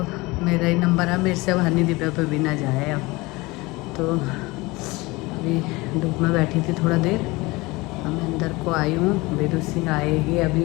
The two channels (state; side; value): quieter; right; 22.7 dB